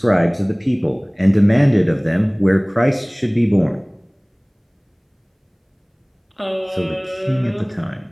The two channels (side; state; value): both; identical; correlation 1.00